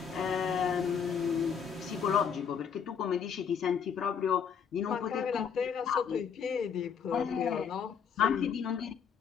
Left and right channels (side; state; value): right; quieter; 7.1 dB